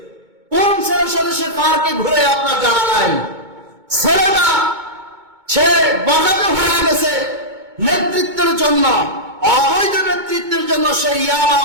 কোন ছেলের সাথে সে পার্কে ঘুরে আপনার জানা নাই। ছেলেটা সে বগাতে হয়ে গেছে নেতৃত্বের জন্য, অবৈধ নেতৃত্বের জন্য। সে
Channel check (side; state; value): left; late; 2.2 ms